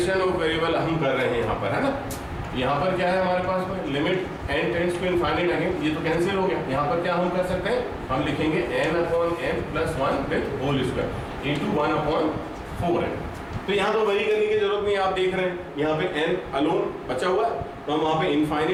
of variable हम कर रहे हैं यहाँ पर, है ना। यहाँ पर क्या है हमारे पास में, limit n tends to infinite, again ये तो कैंसिल हो गया। यहाँ पर क्या हम कर सकते हैं, हम लिखेंगे n upon n plus 1 with whole square into 1 upon 4n। तो यहाँ तो वही करने की जरूरत नहीं, आप देख रहे हैं यहाँ पे n अलोन बचा हुआ है, तो हम वहाँ पे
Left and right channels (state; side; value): identical; both; correlation 1.00